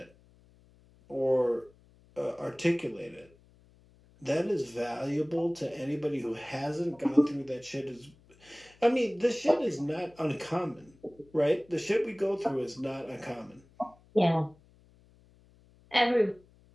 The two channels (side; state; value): left; noise; hum, 29 dB below the sound